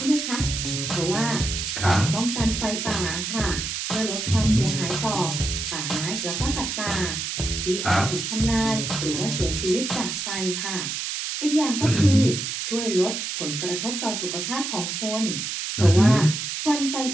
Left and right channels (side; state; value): right; noise; hiss, 4 dB below the sound